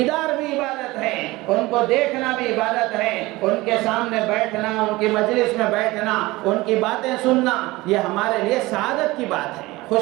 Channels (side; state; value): left; quieter; 20.4 dB